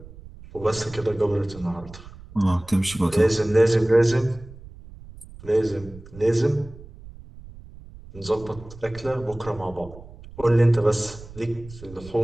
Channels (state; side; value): noise; right; rumble, 18 dB below the sound